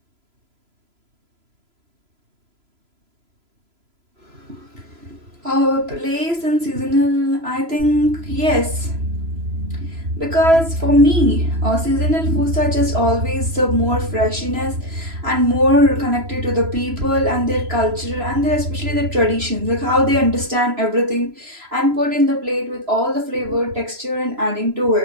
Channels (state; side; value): late; left; 3.0 ms